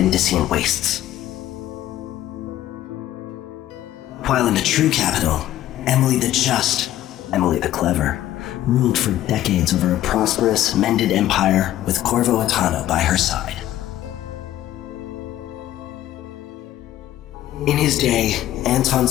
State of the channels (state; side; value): quieter; right; 13.3 dB